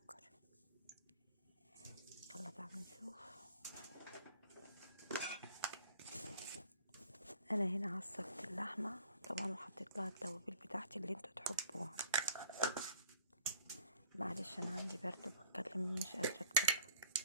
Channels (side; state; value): both; inverted; correlation -0.53